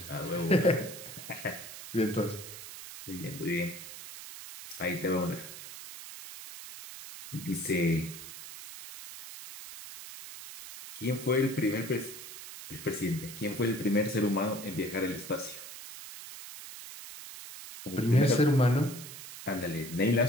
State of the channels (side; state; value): right; noise; hiss, 12 dB below the sound